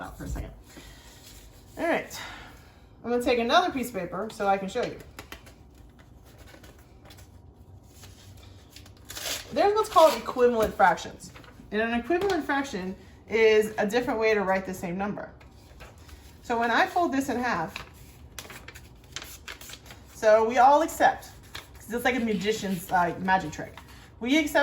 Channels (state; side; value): identical; both; correlation 1.00